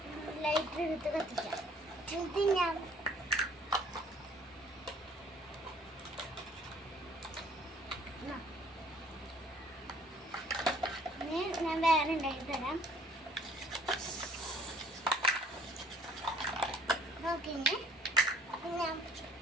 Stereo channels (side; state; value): both; normal; correlation 0.58